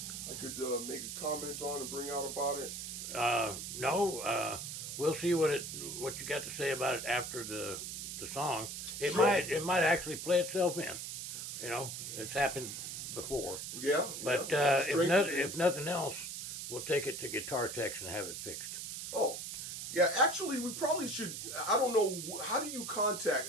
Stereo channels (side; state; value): right; noise; hiss, 6 dB below the sound